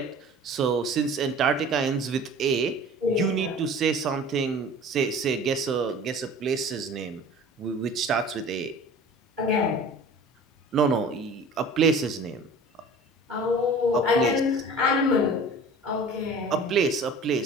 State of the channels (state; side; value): normal; both; correlation 0.43